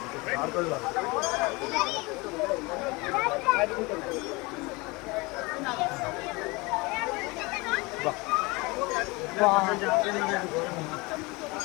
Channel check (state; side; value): quieter; right; 25.1 dB